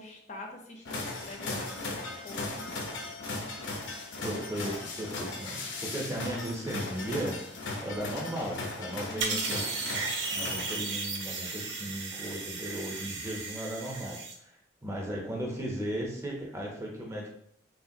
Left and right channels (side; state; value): both; normal; correlation 0.37